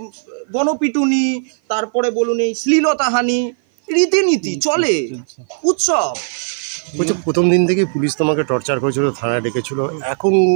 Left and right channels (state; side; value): silent; left; 55 dB below the other